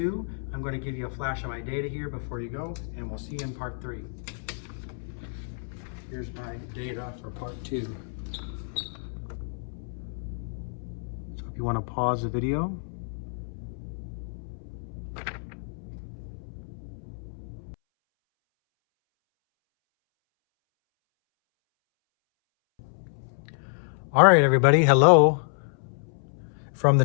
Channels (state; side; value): silent; right; 59 dB below the other